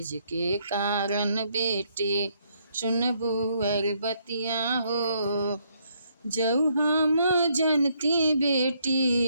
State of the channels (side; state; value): both; inverted; correlation -0.71